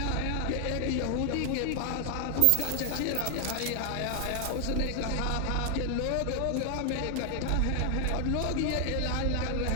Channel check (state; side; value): different; both; correlation 0.00